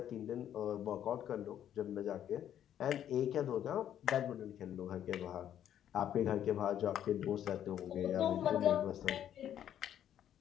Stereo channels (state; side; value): quieter; right; 10.4 dB